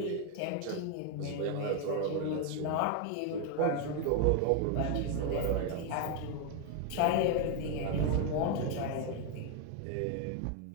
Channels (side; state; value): both; different; correlation 0.01